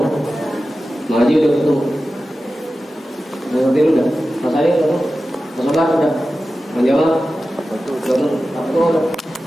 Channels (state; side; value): normal; both; correlation 0.94